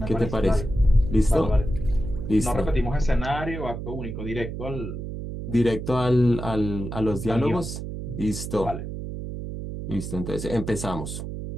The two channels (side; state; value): right; noise; hum, 7 dB below the sound